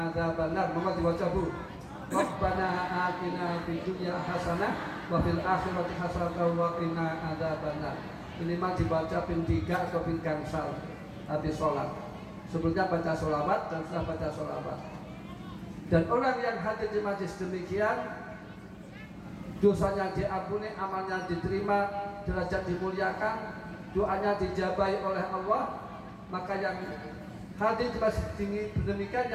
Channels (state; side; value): identical; both; correlation 1.00